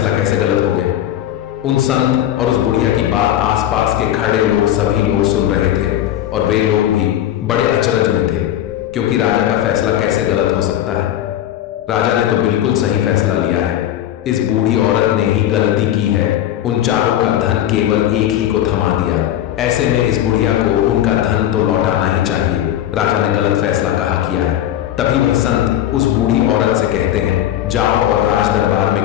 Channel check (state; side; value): quieter; right; 11.9 dB